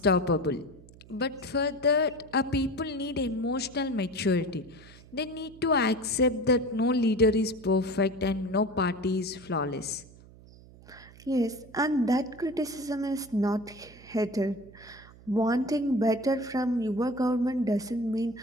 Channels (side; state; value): right; noise; hum, 22 dB below the sound